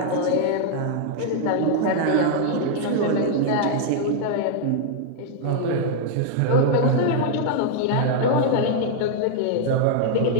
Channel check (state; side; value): different; both; correlation 0.00